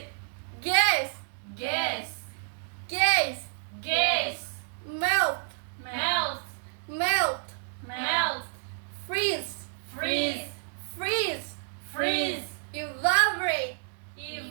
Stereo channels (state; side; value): silent; left; digital silence